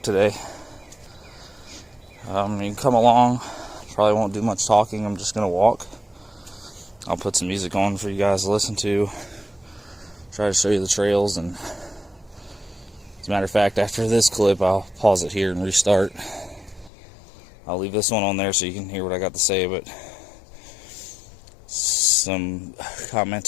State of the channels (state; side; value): drops out; right; at 16.9 s